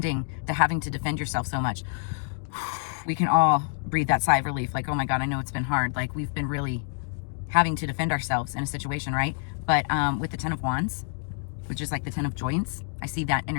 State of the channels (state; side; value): silent; right; 60 dB below the other